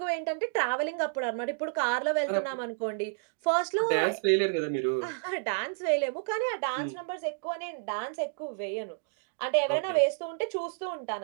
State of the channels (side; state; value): left; silent; digital silence